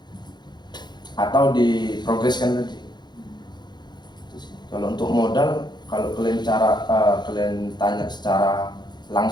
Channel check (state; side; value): late; right; 0.21 ms